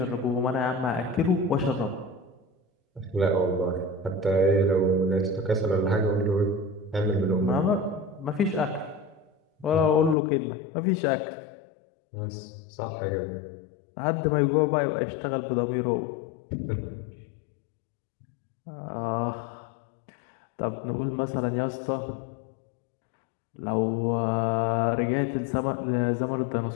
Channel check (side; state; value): right; drops out; at 10.2 s